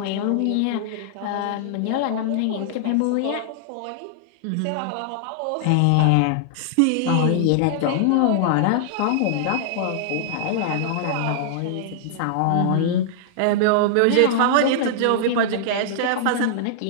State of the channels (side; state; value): both; different; correlation -0.01